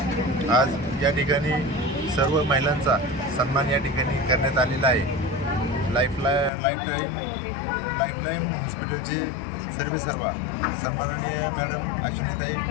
आज या ठिकाणी सर्व महिलांचा सन्मान या ठिकाणी करण्यात आलेला आहे। लाईफलाईन हॉस्पिटलचे सर्वेसर्वा सन्माननीय मॅडम अश्विनीताई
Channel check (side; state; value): right; drops out; at 6.5 s